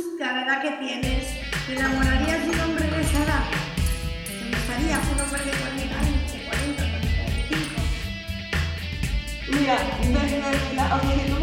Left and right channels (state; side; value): identical; both; correlation 1.00